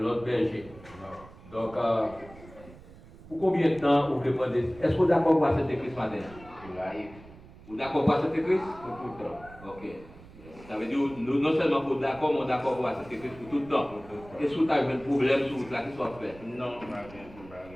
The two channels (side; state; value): right; noise; rumble, 20 dB below the sound